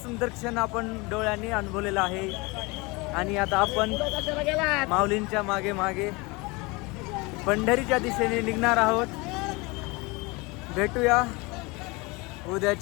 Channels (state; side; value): quieter; right; 25.8 dB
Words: सुंदर क्षण आपण डोळ्यांनी अनुभवलेला आहे आणि आता आपण माऊलींच्या मागे मागे पंढरीच्या दिशेने निघणार आहोत. भेटूया